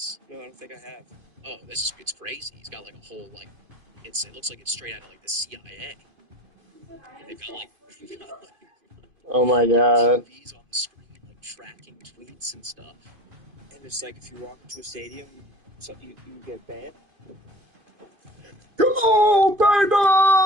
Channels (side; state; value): left; late; 2.5 ms